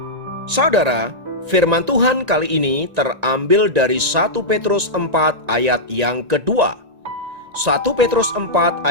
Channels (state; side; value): late; left; 1.9 ms